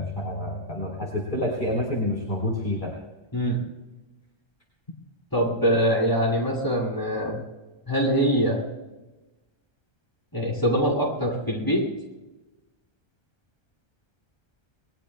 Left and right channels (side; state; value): right; late; 1.3 ms